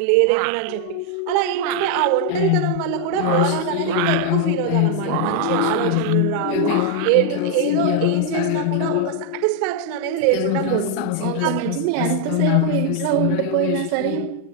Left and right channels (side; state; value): both; different; correlation 0.00